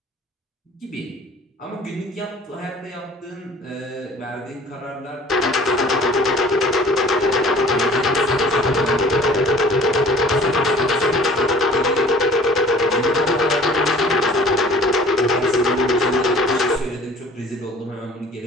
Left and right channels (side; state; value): both; normal; correlation 0.49